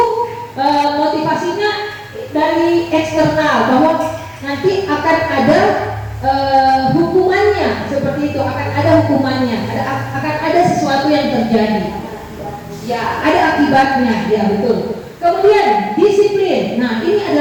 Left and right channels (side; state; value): both; identical; correlation 1.00